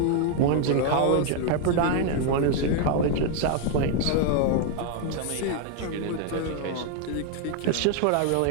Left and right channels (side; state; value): both; different; correlation 0.00